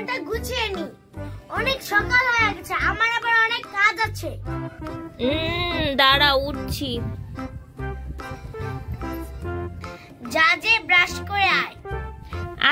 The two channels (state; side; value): identical; both; correlation 1.00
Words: গুছিয়ে নি। অনেক সকাল হয়ে গেছে, আমার আবার অনেক কাজ আছে। দাঁড়াও, উঠছি। যা যে ব্রাশ করে আয়।